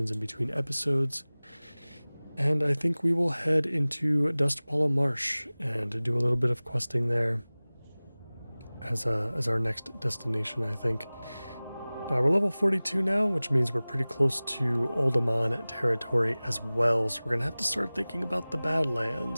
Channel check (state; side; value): inverted; both; correlation -0.99